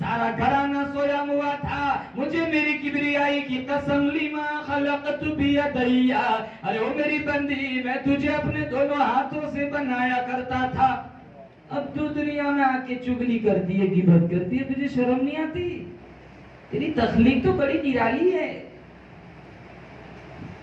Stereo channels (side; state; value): both; identical; correlation 1.00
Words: घराना सोया हुआ था। मुझे मेरी किबरियाई की कसम, लिमा खलक़तु बियदैया, अरे ओ मेरी बंदी, मैं तुझे अपने दोनों हाथों से बनाया करता था। अब तू दुनिया में आके चुगली करती है, गिबत करती है, तुझे शर्म नहीं आती? तेरी तखलीक तो बड़ी निराली है।